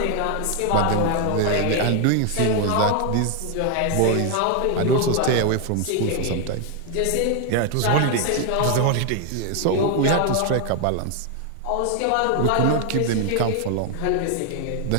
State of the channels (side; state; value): both; different; correlation 0.00